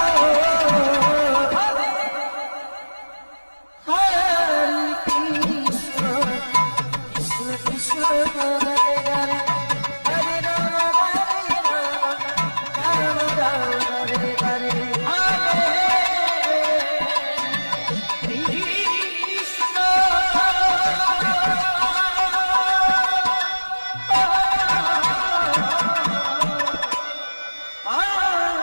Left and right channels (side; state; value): both; inverted; correlation -1.00